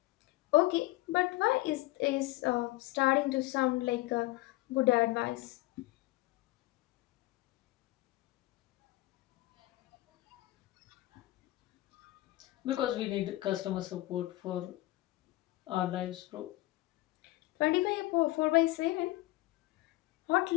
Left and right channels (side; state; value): right; quieter; 18.6 dB